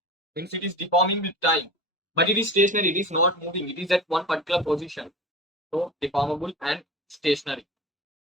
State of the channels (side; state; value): both; normal; correlation 0.32